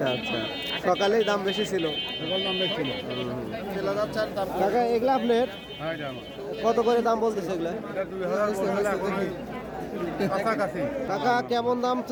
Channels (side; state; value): both; identical; correlation 1.00